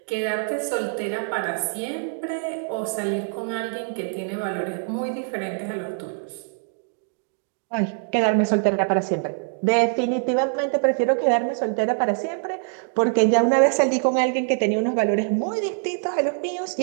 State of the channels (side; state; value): left; silent; 60 dB below the other